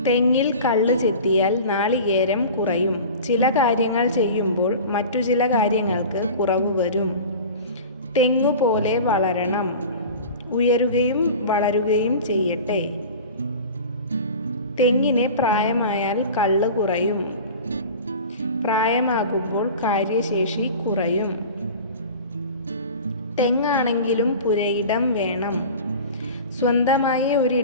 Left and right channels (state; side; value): inverted; both; correlation -0.36